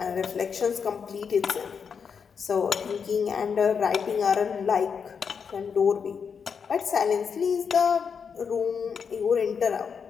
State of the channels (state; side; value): quieter; right; 6.4 dB